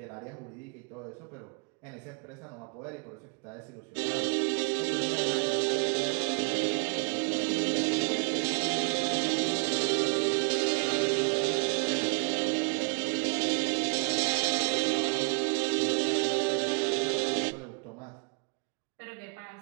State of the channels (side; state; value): left; quieter; 35.9 dB